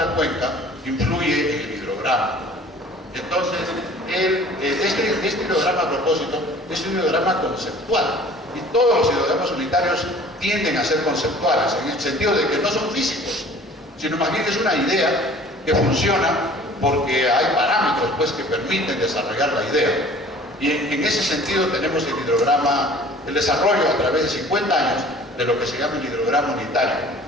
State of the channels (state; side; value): normal; both; correlation 0.48